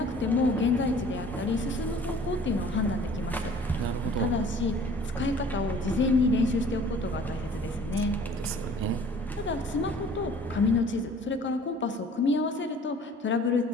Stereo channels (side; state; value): both; normal; correlation 0.50